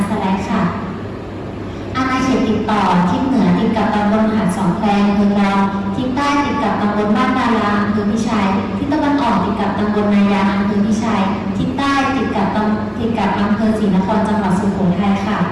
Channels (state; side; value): identical; both; correlation 1.00